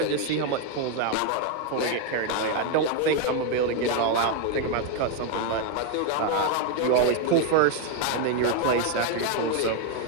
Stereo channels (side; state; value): both; different; correlation 0.01